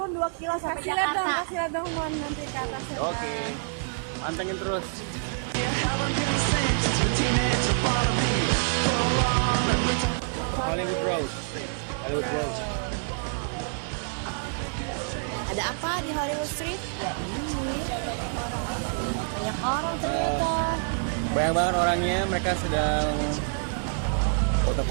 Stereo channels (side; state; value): left; silent; 60 dB below the other